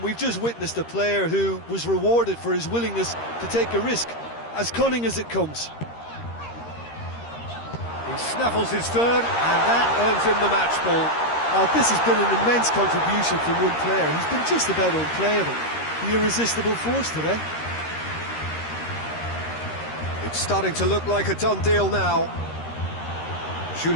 we've just witnessed a player who was rewarded for his willingness to take a risk, as cunning as it comes. He snaffles his third, and that earns him the match ball. Oh, this has been an immense contribution from one player. He's been just about unplayable. The irresistible force today. It's starting to look like a done deal now.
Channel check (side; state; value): right; late; 13 ms